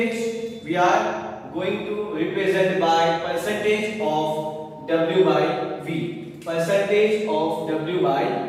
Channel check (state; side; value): identical; both; correlation 1.00